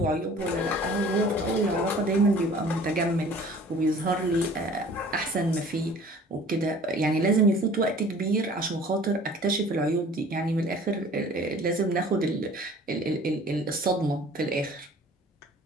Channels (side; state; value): both; normal; correlation 0.48